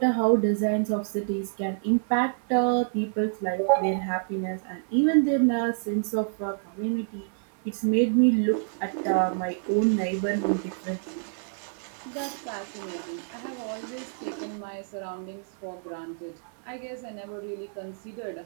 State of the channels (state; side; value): silent; left; digital silence